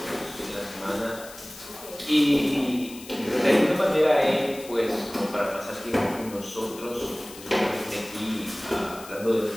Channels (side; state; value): left; noise; hiss, 16 dB below the sound